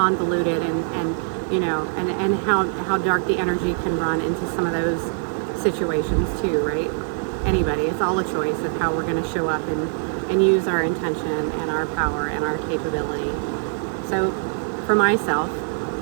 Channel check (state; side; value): silent; left; 63 dB below the other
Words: and you know, and how dark the energy can run into some of those situations too, right? Anybody, it's all a choice of how we're going to show up and use our intention and our power and our capability. So for myself,